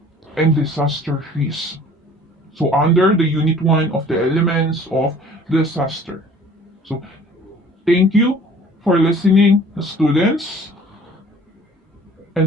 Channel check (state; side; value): normal; both; correlation 0.50